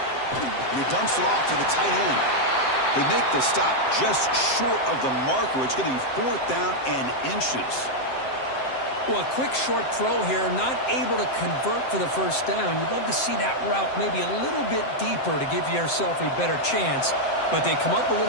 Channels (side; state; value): right; late; 7.7 ms